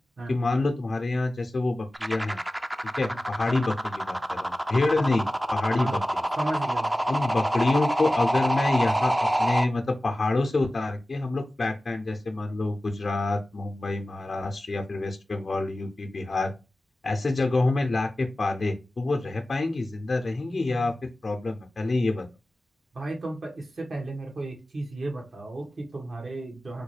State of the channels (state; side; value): normal; both; correlation 0.96